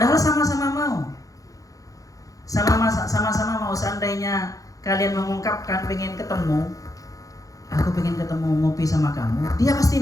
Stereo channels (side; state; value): right; late; 0.17 ms